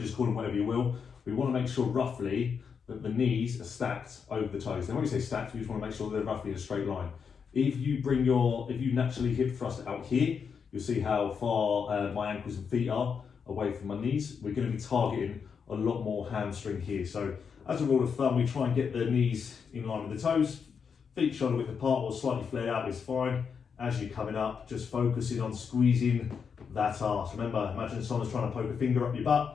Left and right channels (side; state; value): right; quieter; 6.3 dB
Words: call them whatever you will, we want to make sure roughly that the knees are stacked over the toes. Now when we say stacked, we just want to make sure they're roughly in a straight line. If you naturally hip thrust out here, you'll see how far my ankles and feet are away from my knees. We're going to be targeting a lot more hamstring here. So as a rule of thumb, we try and get the knees in line with the toes. Feet shoulder width apart or slightly flared out is fine. As you're coming up, just focusing on squeezing that arse. Remember, imagine someone's trying to poke a finger up your